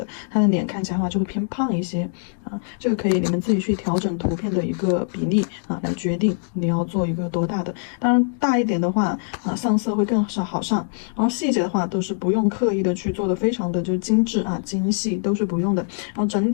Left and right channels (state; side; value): silent; right; digital silence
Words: 它的脸看起来的话就会偏胖一些啊。这个可以你们自己去调整图片的一个比例啊，来决定你要做一个多大的。当然大一点的话，上色会更好上，然后细节的话都是不用刻意的去做的非常的就精致啊精细，都是不用的。然后整